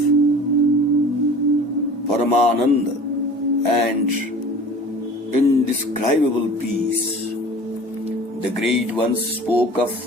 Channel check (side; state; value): both; normal; correlation 0.42